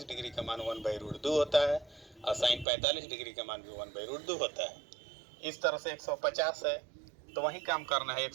डिग्री का मान 1/√2 होता है और साइन 45 डिग्री का मान भी 1/√2 होता है। इस तरह से 150 है, तो वही काम करना है,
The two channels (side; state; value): left; drops out; at 2.7 s